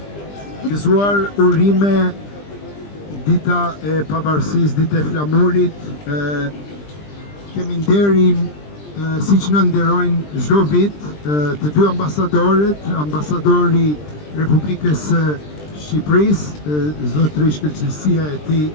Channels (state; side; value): late; right; 20 ms